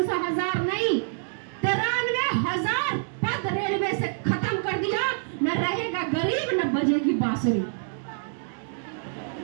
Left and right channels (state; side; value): silent; left; digital silence